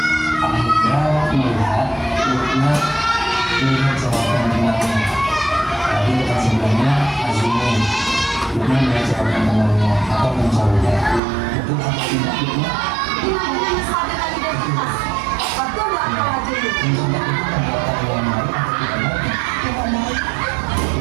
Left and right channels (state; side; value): drops out; left; at 11.2 s